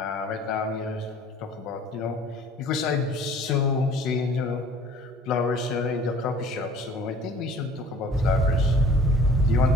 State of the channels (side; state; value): both; normal; correlation 0.49